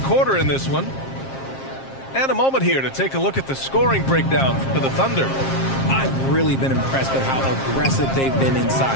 quarter in this one. And a moment here to take a look at the scoring breakdown for the Thunder. I've really been impressed with how aggressive they've been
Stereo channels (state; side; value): late; right; 7.5 ms